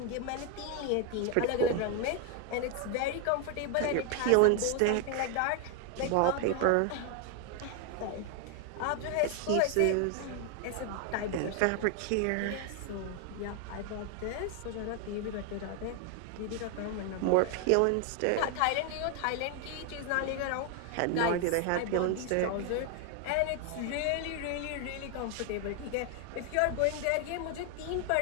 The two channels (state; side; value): different; both; correlation 0.01